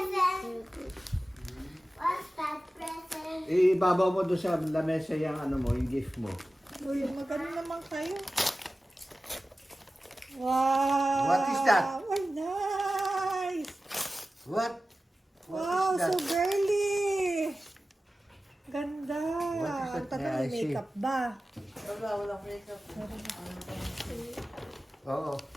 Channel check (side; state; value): both; normal; correlation 0.95